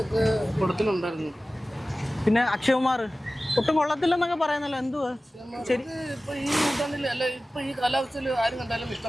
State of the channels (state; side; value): normal; both; correlation 0.96